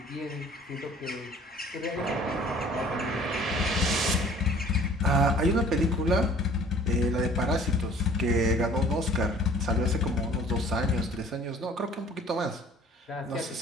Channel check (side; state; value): both; normal; correlation 0.52